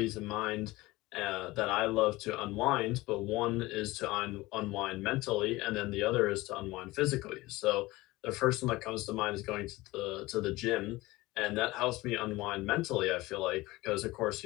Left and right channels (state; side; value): quieter; right; 19.9 dB